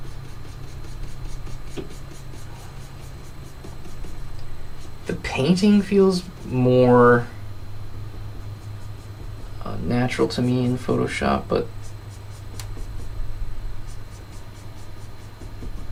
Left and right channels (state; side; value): identical; both; correlation 1.00